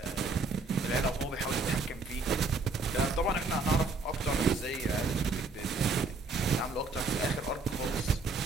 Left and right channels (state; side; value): quieter; left; 3.7 dB